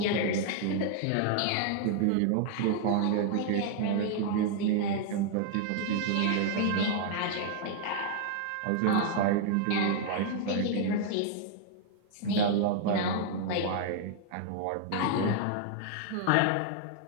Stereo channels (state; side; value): different; both; correlation 0.00